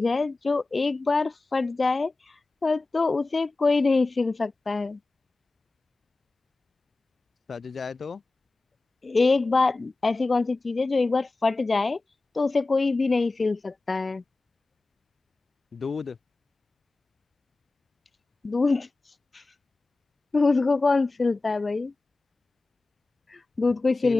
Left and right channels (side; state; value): right; quieter; 3.4 dB